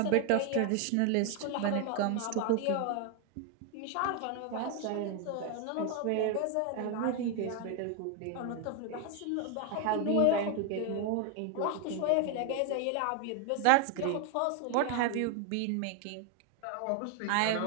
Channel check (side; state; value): both; different; correlation 0.01